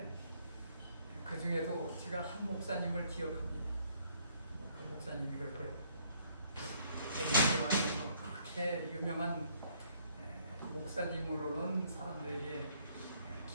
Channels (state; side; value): inverted; both; correlation -0.65